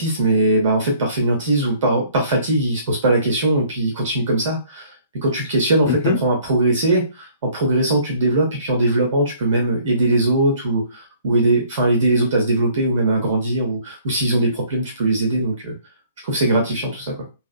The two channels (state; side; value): inverted; both; correlation -0.58